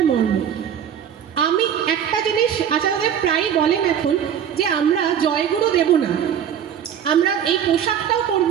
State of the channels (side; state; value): left; quieter; 8.8 dB